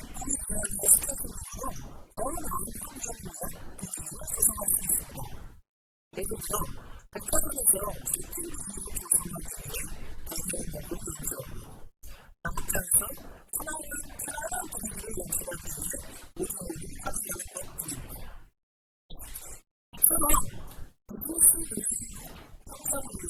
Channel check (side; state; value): both; identical; correlation 1.00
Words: 유연한 스케줄링으로 더 나은 환경을 위한 분위기를 조성할 수 있습니다. 예를 들어 백화점에서 쇼핑 분위기를 조성하기 위해 배경음악을 연주하고 작업장에서 편안한 분위기를 연출하기 위해 오디오를 활용하는 것 등입니다. 이처럼 비즈니스 운영 향상을